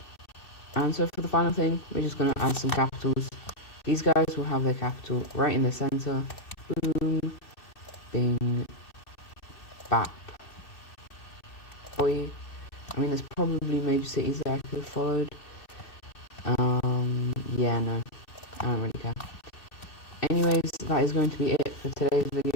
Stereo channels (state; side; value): late; right; 2.6 ms